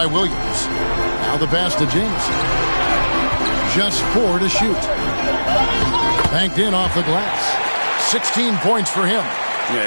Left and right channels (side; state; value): both; inverted; correlation -1.00